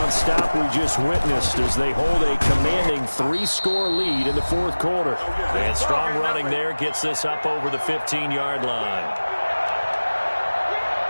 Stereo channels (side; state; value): both; inverted; correlation -1.00